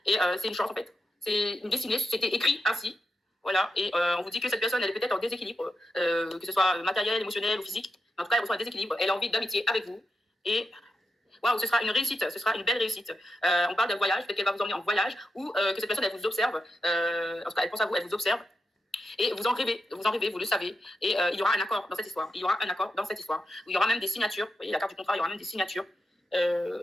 Et c'est une chance, en fait. C'est une destinée. C'était écrit ainsi. Voilà, et on vous dit que cette personne, elle est peut-être en déséquilibre, que ce soit matériel, émotionnel ou physique. En tout cas, elle reçoit un déséquilibre. Elle a envie d'amitié avec vous. Et waouh, ce sera une réussite, ce sera une belle réussite. On parle d'un voyage, peut-être qu'elle va vous emmener en voyage ou que cette personne, elle vous observe. En tout cas, elle pense à vous, elle vous observe. Et vous en rêvez, vous le savez. Et il y aura un accord dans cette histoire. Il y aura même des signatures. Vous voyez, la carte du contrat, il y aura même des signatures.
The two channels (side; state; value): both; normal; correlation 0.87